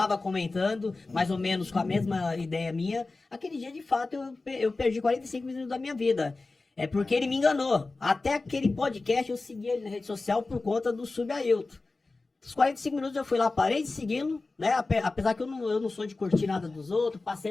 comentando, mais ou menos com a mesma ideia minha. Aquele dia, de fato, eu perdi 45 minutos da minha vida. É porque ele me enganou. Até aquele podcast eu segui ele na rede social por conta do Subailton. Os 45 minutos eu fui lá, parei de segui-lo, né? Apesar que eu não sou de curtir nada dos outros,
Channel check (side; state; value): right; quieter; 3.5 dB